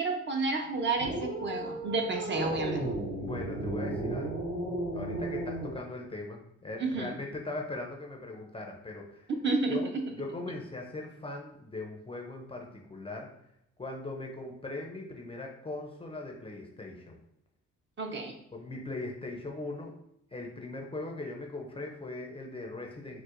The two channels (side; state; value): both; normal; correlation 0.39